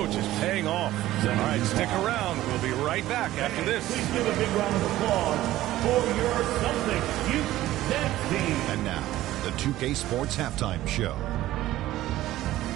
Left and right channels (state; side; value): quieter; left; 15.1 dB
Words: is paying off. All right, stick around. We'll be right back after this. Please give a big round of applause for your Celtics youth dance team. And now, the 2K Sports Halftime Show.